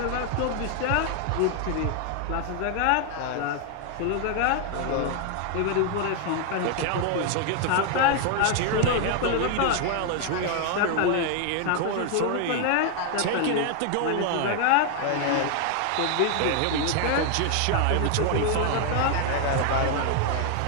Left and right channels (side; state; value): both; different; correlation 0.00